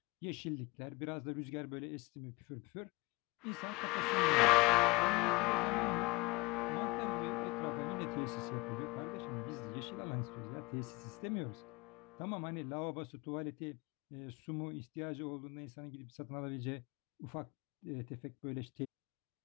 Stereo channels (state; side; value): quieter; right; 24.2 dB